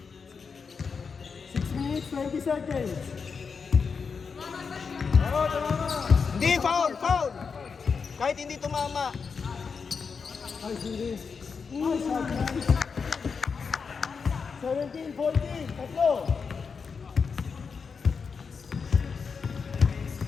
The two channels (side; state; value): right; quieter; 5.5 dB